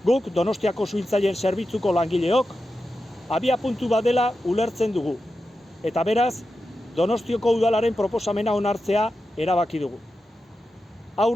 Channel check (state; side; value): normal; both; correlation 0.90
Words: Guk Donostiako suhiltzaileen zerbitzuko langileok abiapuntu bat dela ulertzen dugu. Eta beraz, Donostiako udalaren proposamena onartzea erabaki dugu.